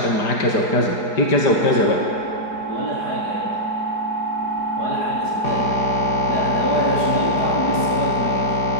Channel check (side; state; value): right; late; 4.9 ms